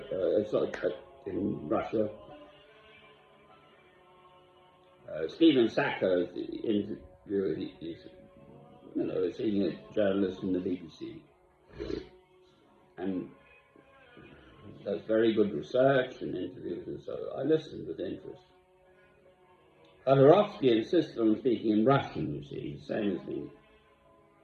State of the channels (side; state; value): both; identical; correlation 1.00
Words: in Russia. Stephen Sacco interviewed, he's a senior journalist in the BBC, and does very good research and interviews, and so I listened with interest. Khodorkovsky insisted on speaking in Russian, you see, same as me.